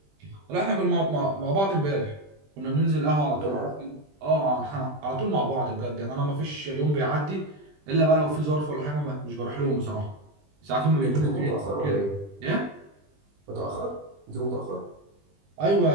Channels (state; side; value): late; left; 20 ms